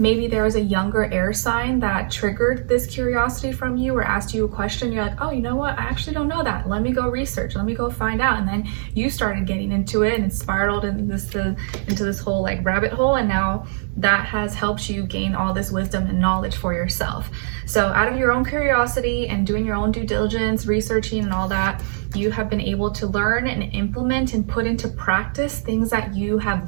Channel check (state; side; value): silent; left; digital silence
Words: there was a younger air sign that triggered this curiosity from you, or asked you a question. You're like, oh, you know what? I actually don't know that. Let me go research. Let me go find out. And then you started getting into it, and it spiraled into this whole rabbit hole. And now that has helped you gain all this wisdom and knowledge for yourself. So out of your own curiosity and doing your own due diligence, researching and all that, you have been able to learn and implement and put into practice things that you